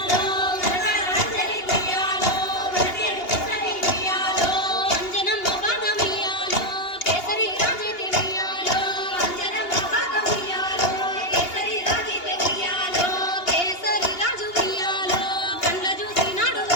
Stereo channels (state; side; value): late; right; 2.8 ms